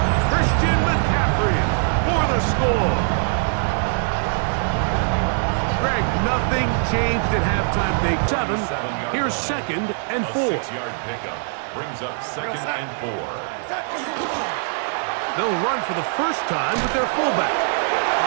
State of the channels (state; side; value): silent; left; digital silence